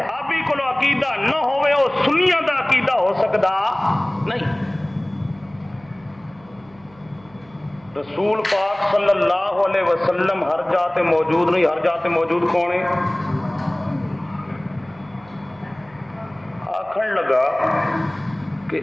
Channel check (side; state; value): right; noise; hum, 27 dB below the sound